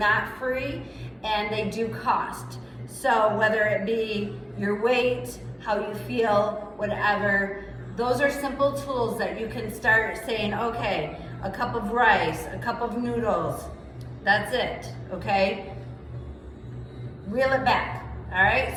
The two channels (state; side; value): identical; both; correlation 1.00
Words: free and they do cost. So whether it be your weight, how you feel, whatever, those are simple tools that you can start saying, okay, a cup of rice, a cup of noodles, that's it, okay? Reel it back, all